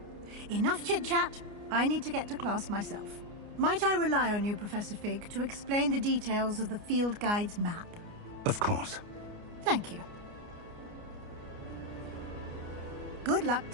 Enough chit-chat. I need to get to class myself. Might I rely on you, Professor Fig, to explain the details of the field guide's map? Of course. Thank you. Good luck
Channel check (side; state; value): left; late; 29 ms